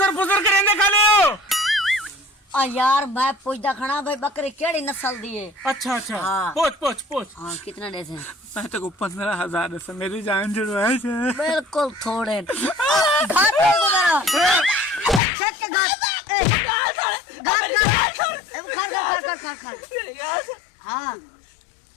फुसर करेंगे खाले हो यार मैं पूछदा खड़ा भाई बकरी केड़ी नस्ल दी है? अच्छा हाँ। पोच हाँ कितना दे से? मैं तेरे को 15,000 देता मेरी जान जुड़वाए थे बिल्कुल थोड़े घाट पे को मेरा चेक के घाट हाँ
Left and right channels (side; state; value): right; drops out; at 15.2 s